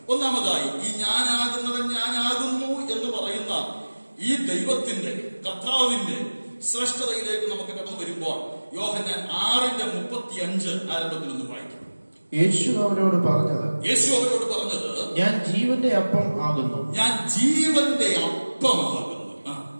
ഒന്നാമതായി, ഈ ഞാനാകുന്നവൻ ഞാനാകുന്നു എന്ന് പറയുന്ന ഈ ദൈവത്തിന്റെ, കർത്താവിന്റെ ശ്രേഷ്ഠതയിലേക്ക് നമുക്ക് കടന്നു വരുമ്പോൾ യോഹന്നാൻ 6:35 ആരംഭത്തിൽ ഒന്ന് വായിക്കും. യേശു അവരോട് പറഞ്ഞത്, ഞാൻ ജീവന്റെ അപ്പം ആകുന്നു. ഞാൻ ജീവന്റെ അപ്പമാകുന്നു.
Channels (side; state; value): both; inverted; correlation -1.00